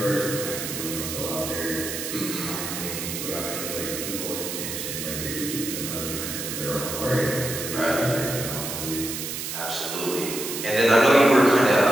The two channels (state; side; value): noise; right; hiss, 5 dB below the sound